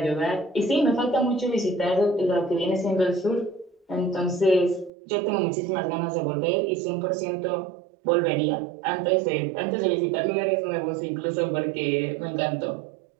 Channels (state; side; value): drops out; left; at 4.9 s